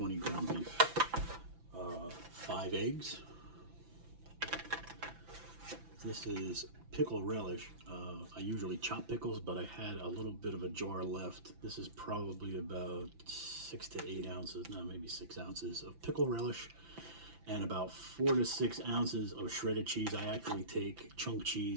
ground beef, 5 eggs. This is pickle relish. I usually chop pickles, but I had a little bit of a jar left. This is probably about 6 to 8 ounces, no, maybe 6 ounces of pickle relish, and about 4 to 6 ounces of shredded cheese. I actually take chunk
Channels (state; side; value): late; left; 5.9 ms